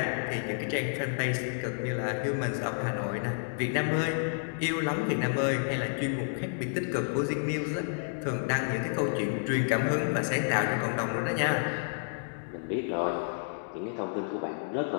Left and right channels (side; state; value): right; silent; digital silence